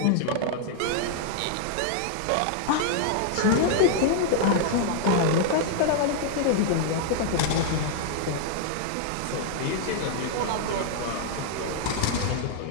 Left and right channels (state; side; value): different; both; correlation 0.00